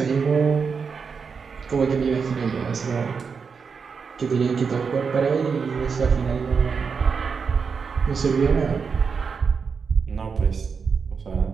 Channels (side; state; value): left; quieter; 5.7 dB